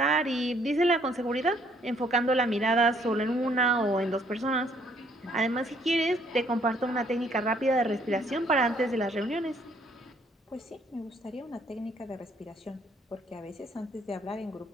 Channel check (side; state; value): both; normal; correlation 0.65